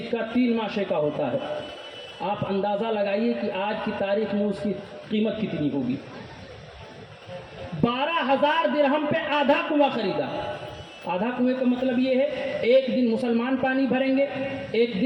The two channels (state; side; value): identical; both; correlation 1.00